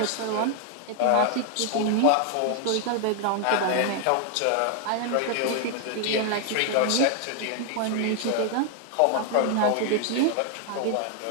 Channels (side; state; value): both; different; correlation 0.00